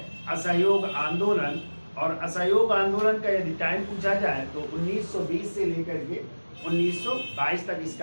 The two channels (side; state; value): both; inverted; correlation -1.00